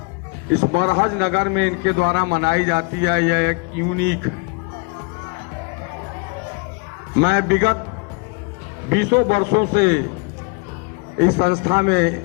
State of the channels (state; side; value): quieter; right; 32.1 dB